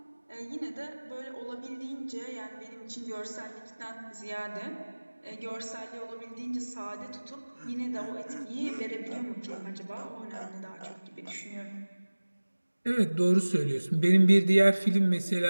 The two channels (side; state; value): both; inverted; correlation -1.00